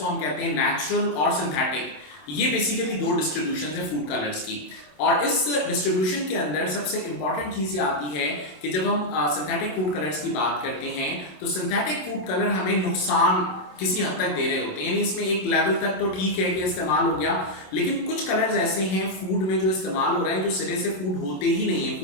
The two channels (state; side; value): late; right; 27 ms